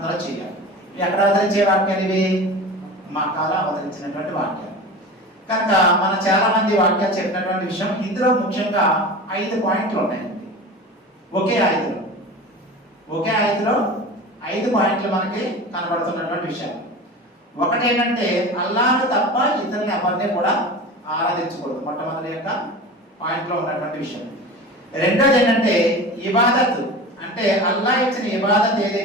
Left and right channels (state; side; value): normal; both; correlation 0.33